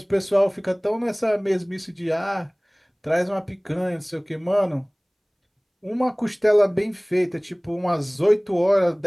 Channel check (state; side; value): identical; both; correlation 1.00